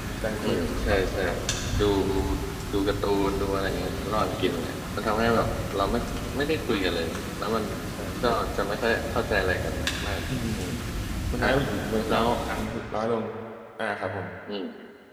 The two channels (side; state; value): both; identical; correlation 1.00